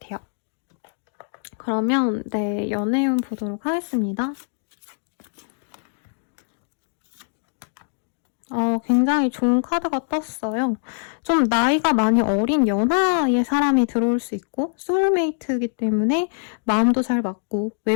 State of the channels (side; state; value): right; silent; 61 dB below the other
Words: 그러면 네, 연애운 보도록 하겠습니다. 굉장히 좋은 카드가 떴어요. 좀 나이가 많이 어린 연하의 사람이 들어올 수 있고 소울메이트이기 때문에 마음도 잘 맞고